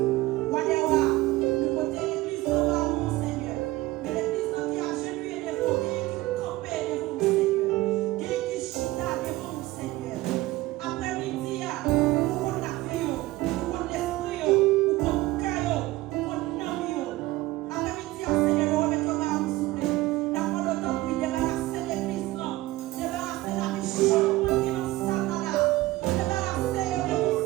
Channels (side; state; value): left; quieter; 18.3 dB